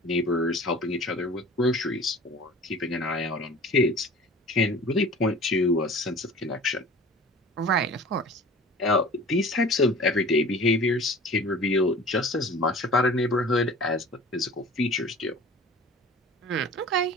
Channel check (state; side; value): normal; both; correlation 0.42